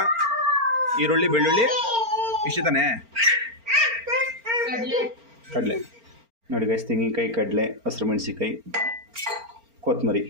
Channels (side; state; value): left; late; 4.4 ms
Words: ಈರುಳ್ಳಿ, ಬೆಳ್ಳುಳ್ಳಿ, ಇಷ್ಟು ತಾನೆ. ಕಡಲೆ ನೋಡಿ ಗಾಯ್ಸ್, ತೆಂಗಿನಕಾಯಿ, ಕಡಲೆ, ಹಸಿರು ಮೆಣಸಿನಕಾಯಿ, ಕೊತ್ತಂಬರಿ,